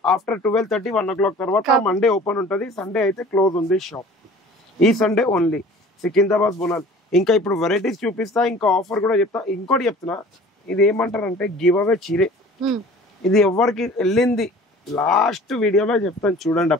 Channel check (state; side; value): normal; both; correlation 0.46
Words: ఆఫ్టర్ 12:30 1 o'clock తర్వాత మండే ఓపెన్ ఉంటుంది. సండే అయితే క్లోజ్ ఉంది షాప్. ఈ సండే ఓన్లీ సికింద్రాబాద్ బోనాలు. ఇంకా ఇప్పుడు వెరైటీస్ చూపిస్తా, ఇంకా ఆఫర్ కూడా చెప్తా. ఇంకోటి చెప్తున్నా, ఇది ఏమంటారంటే గివ్ అవే చీరే. ఇది ఎవరికి వెళ్ళింది లాస్ట్ వీడియోలో చెప్తాను, చూడండి.